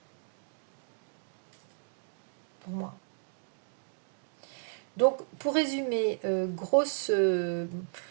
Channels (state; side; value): silent; left; digital silence